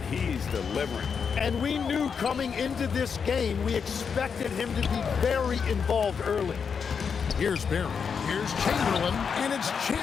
he's delivering. And we knew coming into this game, we expected him to be very involved early. Here's Barry. Here's Chamberlain, and it's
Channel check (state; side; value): quieter; right; 6.3 dB